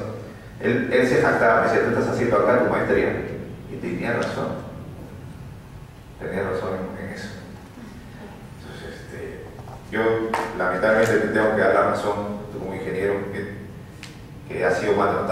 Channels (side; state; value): both; identical; correlation 1.00